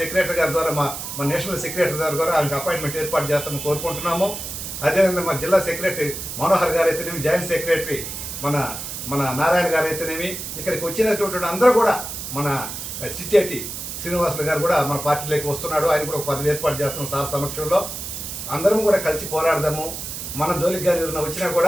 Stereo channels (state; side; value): noise; right; hiss, 7 dB below the sound